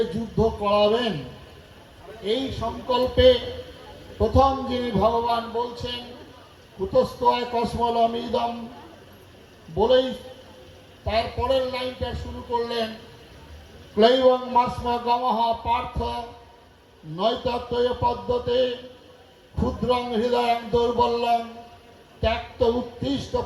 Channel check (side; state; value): both; identical; correlation 1.00